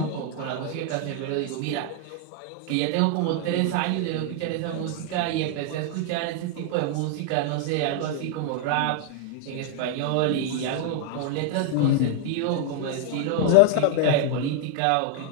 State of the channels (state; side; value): different; both; correlation 0.00